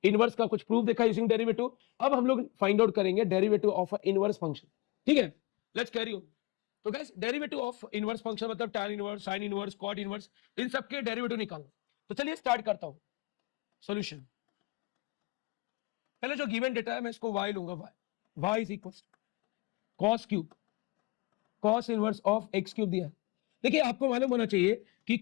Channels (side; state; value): right; quieter; 24.7 dB